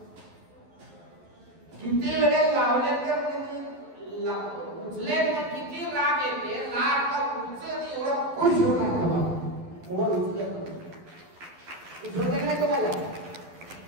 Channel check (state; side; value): late; left; 11 ms